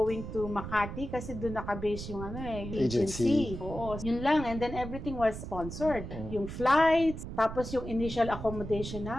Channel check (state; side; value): noise; right; rumble, 8 dB below the sound